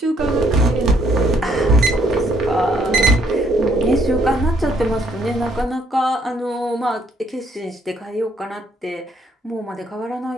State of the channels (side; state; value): both; normal; correlation 0.67